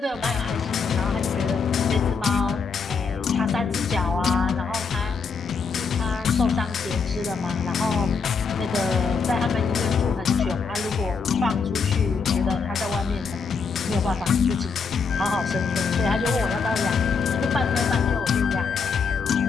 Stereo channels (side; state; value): right; quieter; 5.3 dB